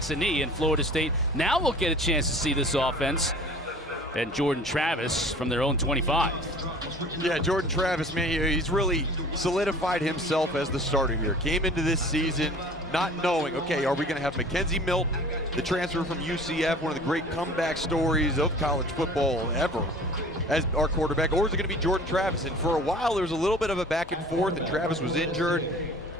a knee, and Florida State now will get a chance to see this offense. And Jordan Travis from their own 25. Yeah, Jordan Travis, man, he's really solidified himself as the starter here. Came into this season not knowing, okay, are we going to have Mackenzie Milton, the transfer from UCF, one of the great comeback stories of college football ever, as our quarterback, or is it going to be Jordan Travis? And for a while, there was a little bit of a back and forth, and Travis was injured.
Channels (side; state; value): both; normal; correlation 0.46